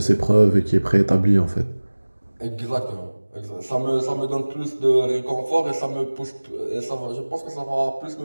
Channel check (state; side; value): inverted; both; correlation -1.00